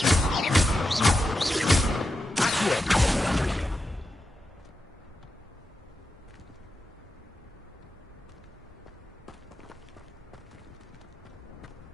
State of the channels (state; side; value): normal; both; correlation 0.89